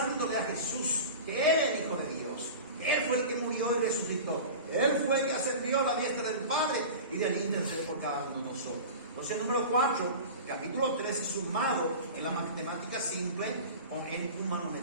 a Jesús, que Él es el Hijo de Dios. Él fue el que murió y resucitó. Él fue el que ascendió a la diestra del Padre y de allí intercede por cada uno de nosotros. Entonces, número 4, capítulo 13, sumado en la matemática simple o en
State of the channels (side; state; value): both; inverted; correlation -0.33